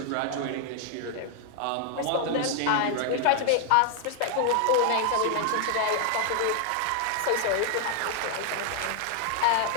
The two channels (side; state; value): both; different; correlation 0.00